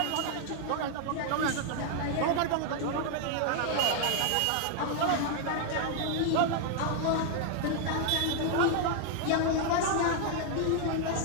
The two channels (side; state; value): both; different; correlation 0.00